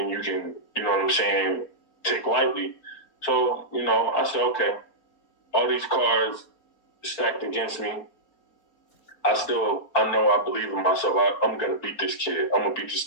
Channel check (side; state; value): right; late; 4.4 ms